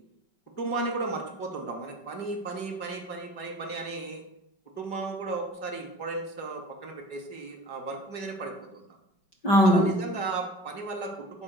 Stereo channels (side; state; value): right; late; 5.3 ms